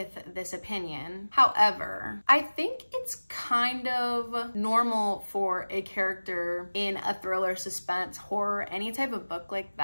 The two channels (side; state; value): both; inverted; correlation -1.00